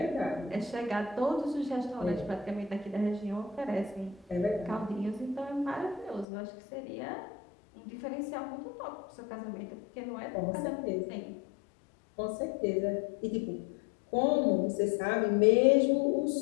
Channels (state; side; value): drops out; right; at 6.2 s